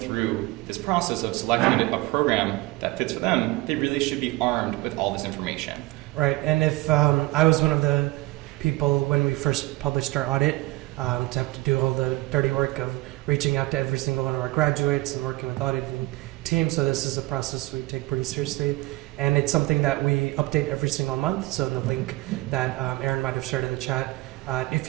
through this process of selecting a program that fits for them, they really should be armed with all this information. Right, and if I was one of the people when we first published our audit, to have to do all the dirty work of reaching out to every single one of our graduates and working with auditing teams. So this is a process we take pretty seriously. And it's something that we update every single month. So in the link that Aaron might have shared in the chat, if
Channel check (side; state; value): left; quieter; 20.3 dB